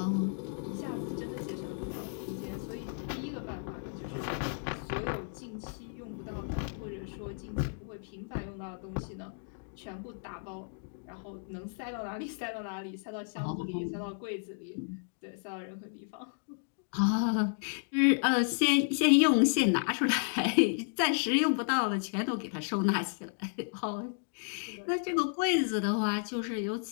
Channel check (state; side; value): silent; right; digital silence